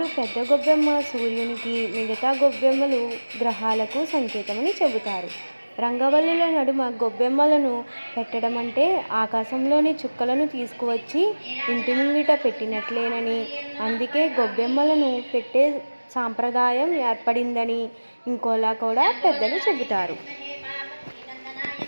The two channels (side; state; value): both; inverted; correlation -1.00